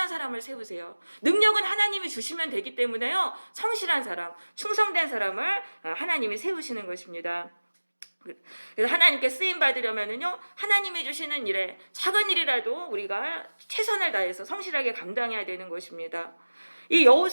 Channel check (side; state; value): both; inverted; correlation -1.00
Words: 사람을 세우세요. 능력은 하나님이 주시면 되기 때문에요, 성실한 사람, 충성된 사람을 하나님이 세우시는 것입니다. 그래서 하나님께 쓰임 받으려면은요, 하나님이 주시는 일에 작은 일이라도 우리가 최선을 다해서 성실하게 감당해야 되는 것입니다. 이